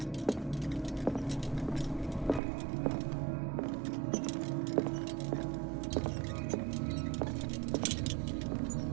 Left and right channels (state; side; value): drops out; left; at 2.4 s